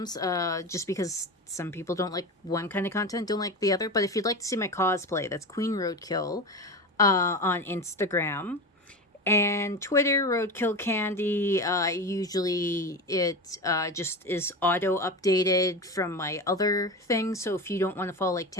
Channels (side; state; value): both; normal; correlation 0.25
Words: just because some people don't like one kind of content, don't like the other. But if you'd like to see my cosplay, that's Queen Roadkill on Instagram. And Twitter, Roadkill Candy. Usually it just is auto updated from my other things. So if you don't want to follow like